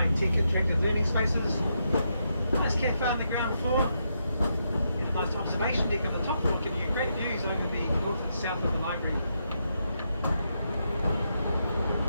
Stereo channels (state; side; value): inverted; both; correlation -0.81